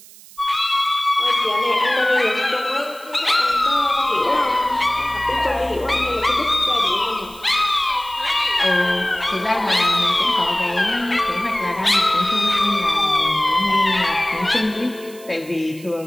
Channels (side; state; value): right; noise; hiss, 21 dB below the sound